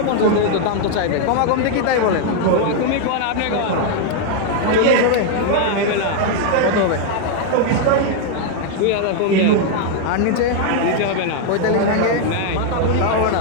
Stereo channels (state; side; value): different; both; correlation 0.00